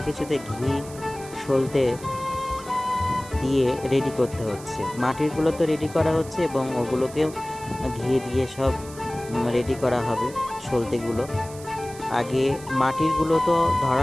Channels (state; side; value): noise; right; hiss, 18 dB below the sound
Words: কিছুতে ঘি সলতে দিয়ে রেডি করতে হচ্ছে। মাটিরগুলো তো রেডি করা হচ্ছে এবং ওগুলোকেও ঘি দিয়ে সব রেডি করা হবে। সলতেগুলো আগে মাটিরগুলো তো